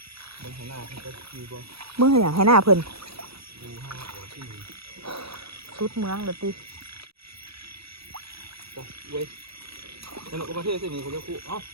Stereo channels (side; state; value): left; late; 0.77 ms